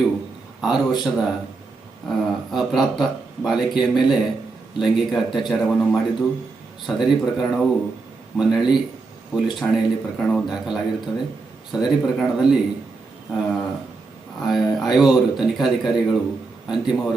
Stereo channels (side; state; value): left; quieter; 3.9 dB